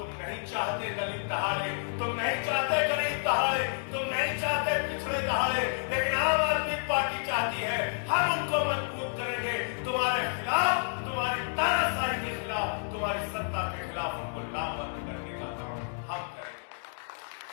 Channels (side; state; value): right; silent; digital silence